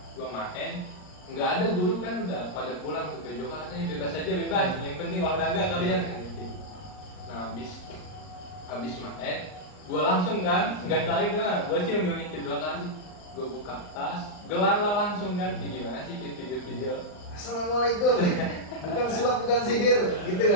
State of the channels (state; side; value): late; right; 39 ms